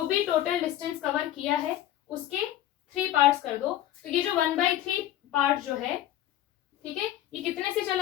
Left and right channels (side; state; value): right; quieter; 13.0 dB